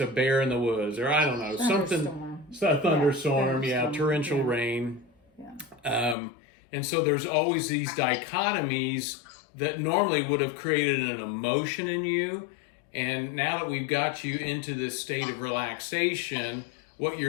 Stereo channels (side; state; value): right; drops out; at 6.2 s